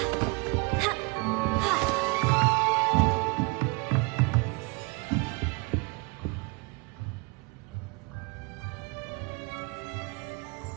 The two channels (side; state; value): left; quieter; 28.9 dB